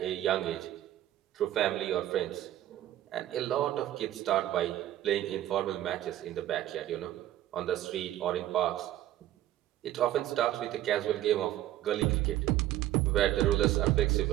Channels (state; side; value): quieter; left; 13.4 dB